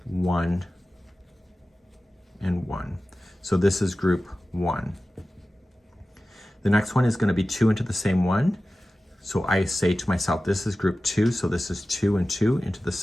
1 and 1. So this is group 1. The next one is going to be 2 into the same one. So I say to myself, this is group 2, so this is 2 and 2 into the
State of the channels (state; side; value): normal; both; correlation 0.95